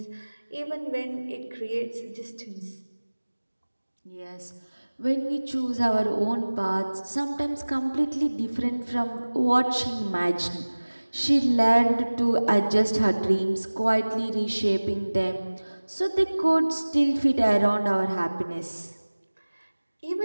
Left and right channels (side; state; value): both; inverted; correlation -1.00